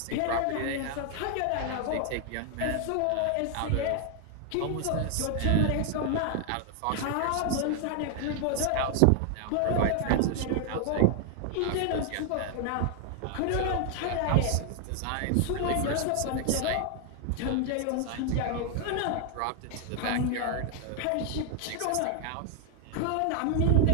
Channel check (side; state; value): both; different; correlation 0.00